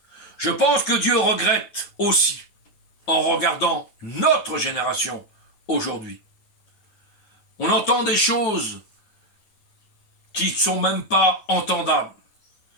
Je pense que Dieu regrette aussi en regardant notre génération aujourd'hui. On entend des choses qui ne sont même pas entendables.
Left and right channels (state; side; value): late; right; 9.4 ms